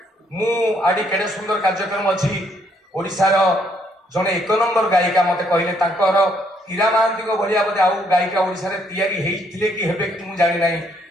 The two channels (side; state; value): both; normal; correlation 0.70